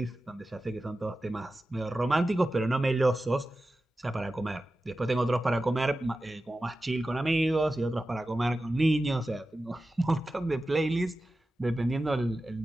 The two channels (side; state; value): both; normal; correlation 0.93